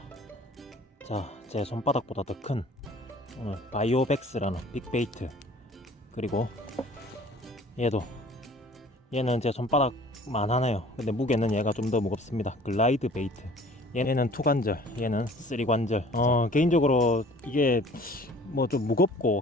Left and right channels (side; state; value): both; normal; correlation 0.50